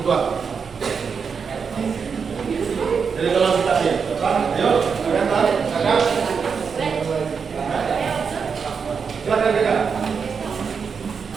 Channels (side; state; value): left; quieter; 5.9 dB